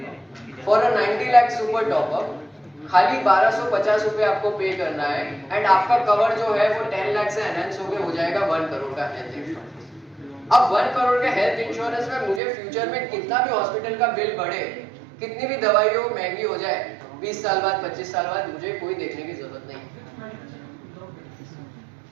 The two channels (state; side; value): drops out; left; at 12.4 s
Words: a 90 lakh super top up. खाली 1250 रुपए आपको पे करना है, एंड आपका कवर जो है वो 10 लाख से एनहांस होकर हो जाएगा 1 करोड़ का हेल्थ इंश्योरेंस। अब 1 करोड़ के हेल्थ इंश्योरेंस में मुझे फ्यूचर में कितना भी हॉस्पिटल का बिल बढ़े, कितनी भी दवाई हो महंगी हो जाए, 20 साल बाद 25 साल बाद मुझे कोई देखने की जरूरत नहीं।